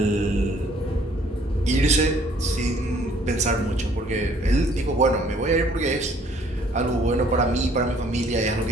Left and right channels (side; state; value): both; normal; correlation 0.60